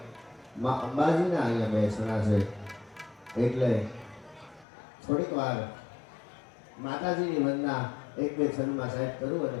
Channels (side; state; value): right; drops out; at 4.7 s